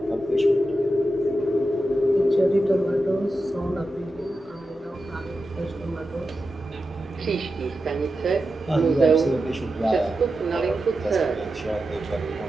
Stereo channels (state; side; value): normal; both; correlation 0.90